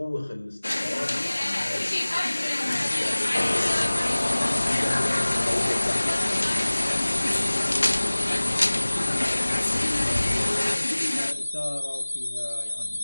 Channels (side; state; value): both; inverted; correlation -1.00